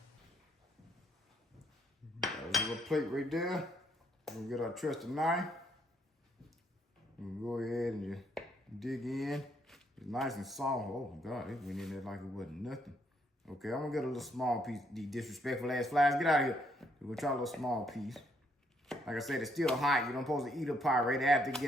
There's a little plate right there. We'll get our trusted knife. We'll go ahead and just dig in. It's nice and soft. Oh God, it went in there like it wasn't nothing. Okay, I'm gonna get a little small piece. These disrespectful ass flies, get out of here. We'll try a little small piece. Like I said, it's still hot. You don't supposed to eat a pie right after you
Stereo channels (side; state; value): both; normal; correlation 0.71